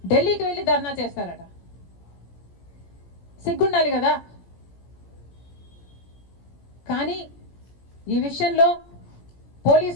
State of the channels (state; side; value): late; right; 16 ms